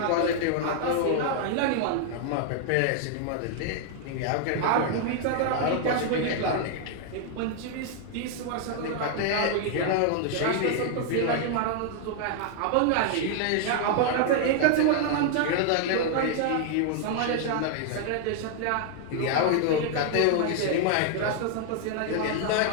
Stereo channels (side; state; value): both; different; correlation 0.00